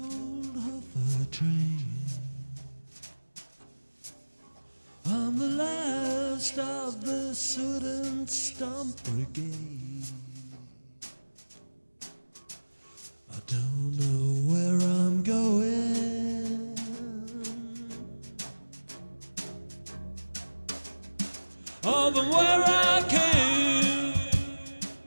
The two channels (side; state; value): both; inverted; correlation -1.00